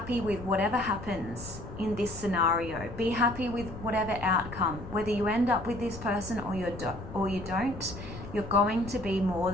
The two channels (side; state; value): left; noise; rumble, 12 dB below the sound